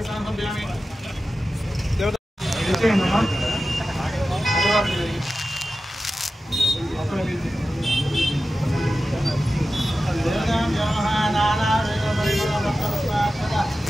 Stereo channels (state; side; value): normal; both; correlation 0.94